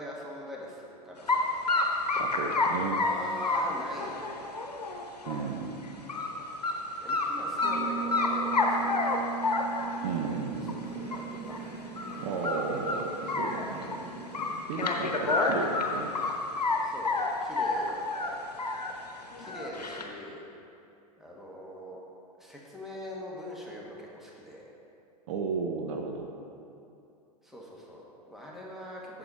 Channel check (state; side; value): normal; both; correlation 0.24